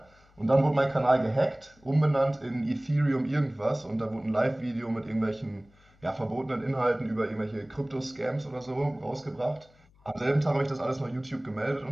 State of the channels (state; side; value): noise; left; hum, 30 dB below the sound